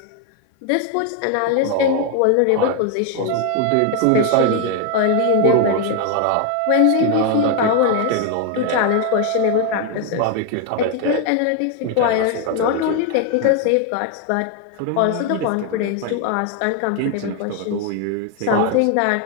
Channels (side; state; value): both; different; correlation 0.01